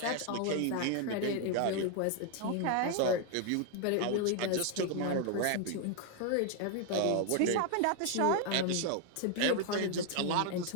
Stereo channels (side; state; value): both; different; correlation 0.01